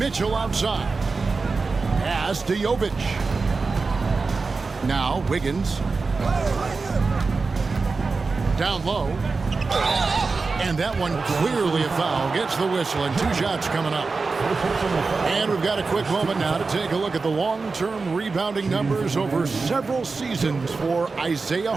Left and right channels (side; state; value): left; quieter; 4.2 dB